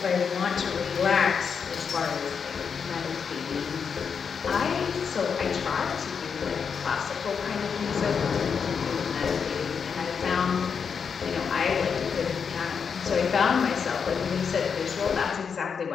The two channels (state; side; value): quieter; right; 6.3 dB